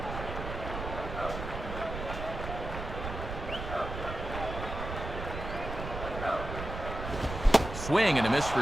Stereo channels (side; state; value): right; noise; rumble, 7 dB below the sound